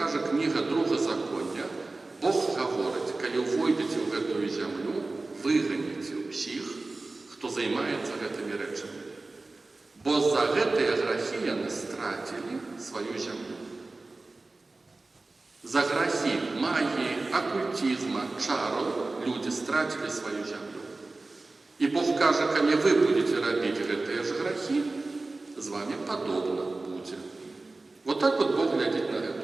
книга Другозаконня, Бог говорит, коли войдете в эту землю, выгоните всех, кто займается этими речами. Бо за гэтые грехи они стратили свою землю. За грехи магии, оккультизма, чаров люди стратили свою землю. И Бог каже, коли вы будете робить гэтые же грехи, с вами подобно будет. Вот так вот Бог глядит на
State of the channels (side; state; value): left; quieter; 3.3 dB